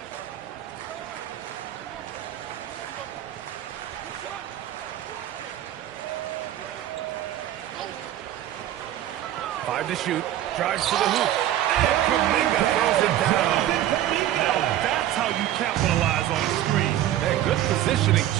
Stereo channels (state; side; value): quieter; left; 12.6 dB